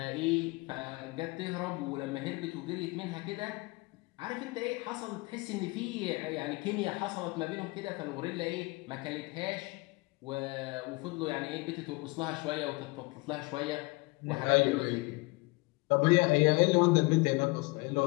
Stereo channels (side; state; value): right; quieter; 25.3 dB